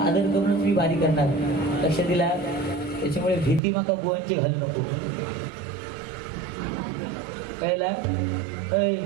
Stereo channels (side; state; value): left; drops out; at 3.6 s